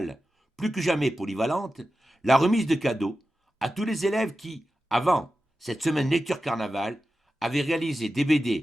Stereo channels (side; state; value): both; normal; correlation 0.92